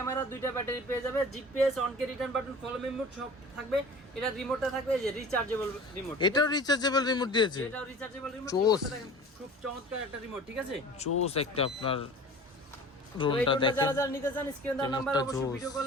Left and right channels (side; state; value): both; normal; correlation 0.41